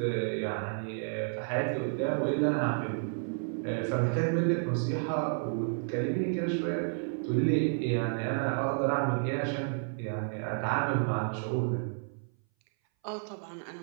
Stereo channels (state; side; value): silent; left; 57 dB below the other